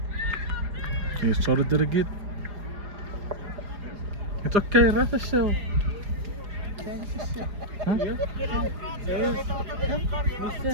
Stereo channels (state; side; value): late; left; 4.9 ms